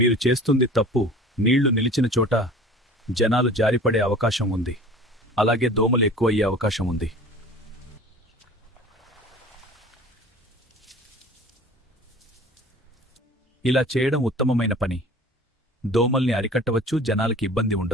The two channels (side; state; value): both; normal; correlation 0.43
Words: చేస్తుంది తప్పు. నీళ్లు నిలిచిన చోట జనాలు జారిపడే అవకాశం ఉంది. అలాగే దోమలు ఎక్కువయ్యే అవకాశం ఉంది. ఇలా చేయడం ఉత్తమమైన పని. దోమల్ని అరికట్టవచ్చు, జనాలకి ఇబ్బంది